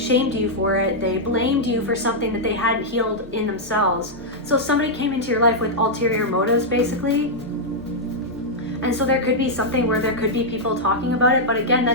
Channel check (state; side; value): normal; both; correlation -0.05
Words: you for it. They blamed you for something that they hadn't healed in themselves. So somebody came into your life with ulterior motives, basically. And so there could be something where there could be people talking about it, but again,